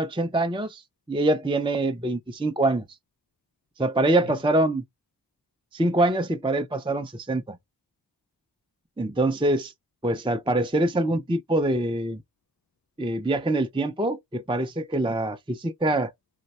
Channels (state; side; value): normal; both; correlation 0.59